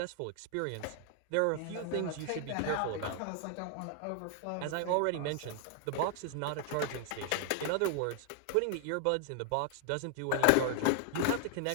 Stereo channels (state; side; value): different; both; correlation 0.00